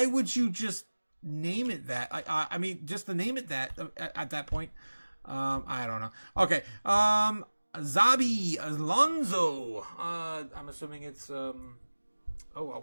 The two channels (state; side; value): inverted; both; correlation -1.00